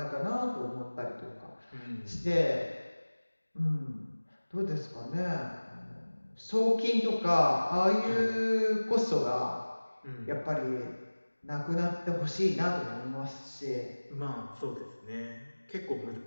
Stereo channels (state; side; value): inverted; both; correlation -1.00